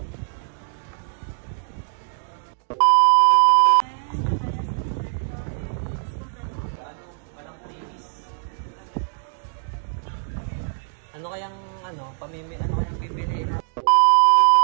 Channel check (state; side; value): silent; left; digital silence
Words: Ano kayang ano kayang pipiliin?